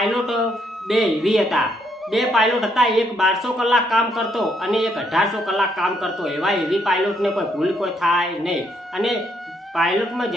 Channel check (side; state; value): both; normal; correlation 0.73